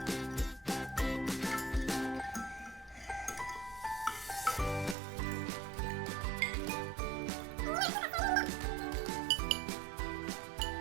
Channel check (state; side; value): drops out; left; at 5.0 s